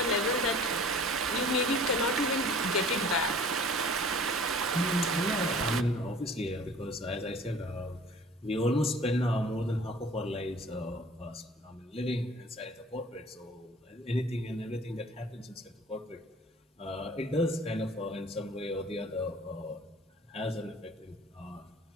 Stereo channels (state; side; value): normal; both; correlation 0.48